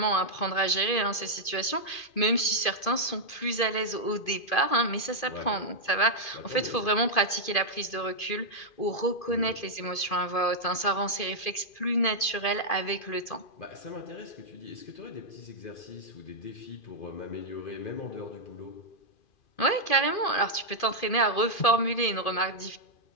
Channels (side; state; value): right; late; 2.4 ms